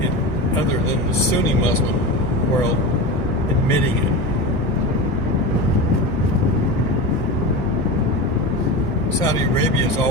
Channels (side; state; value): both; normal; correlation 0.25